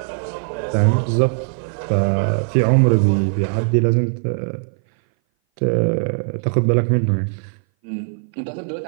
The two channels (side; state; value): left; silent; 59 dB below the other